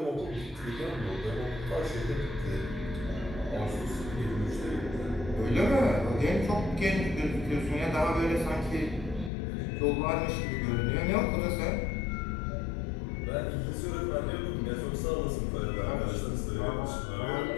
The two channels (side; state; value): right; drops out; at 9.3 s